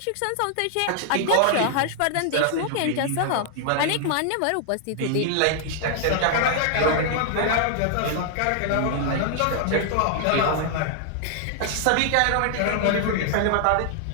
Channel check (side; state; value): both; different; correlation 0.00